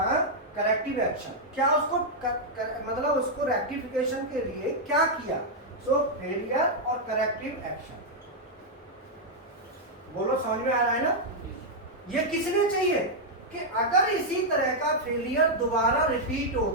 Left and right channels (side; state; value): both; normal; correlation -0.03